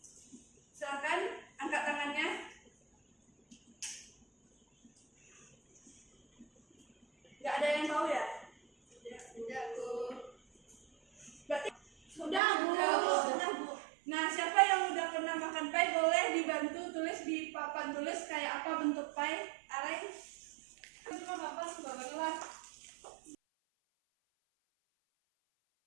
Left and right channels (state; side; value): drops out; left; at 12.4 s